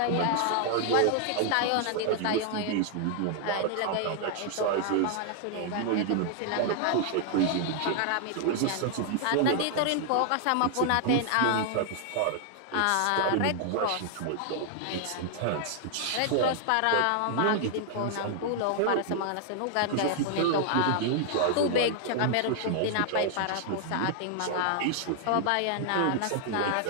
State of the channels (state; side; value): different; both; correlation 0.00